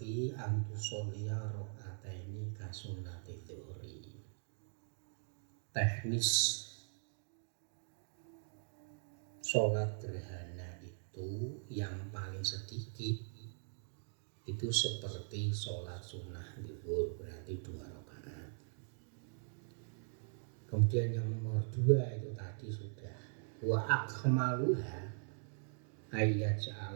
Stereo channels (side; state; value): left; silent; digital silence